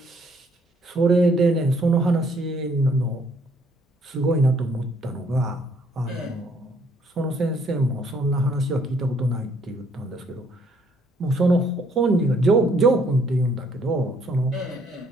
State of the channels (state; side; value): normal; both; correlation 0.65